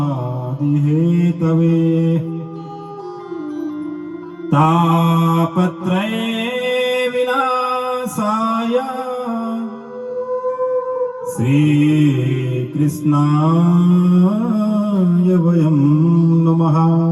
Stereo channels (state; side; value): identical; both; correlation 1.00